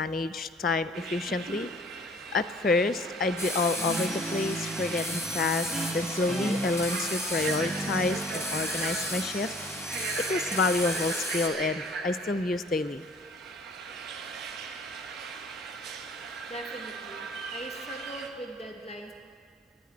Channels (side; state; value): both; normal; correlation 0.53